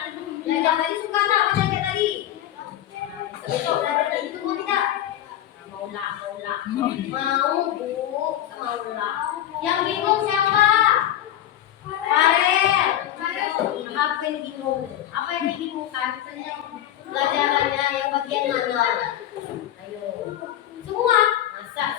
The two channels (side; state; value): right; quieter; 12.0 dB